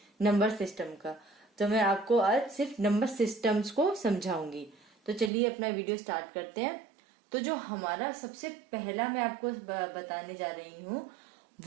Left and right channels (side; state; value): left; drops out; at 5.3 s